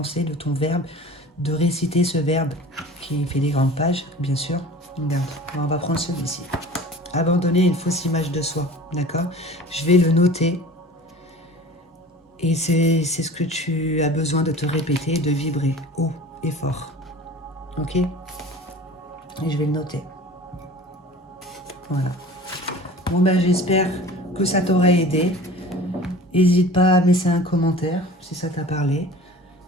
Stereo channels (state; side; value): normal; both; correlation 0.41